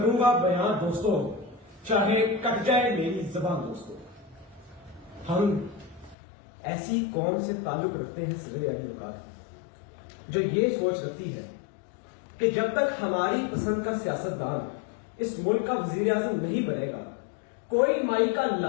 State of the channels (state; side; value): drops out; right; at 6.2 s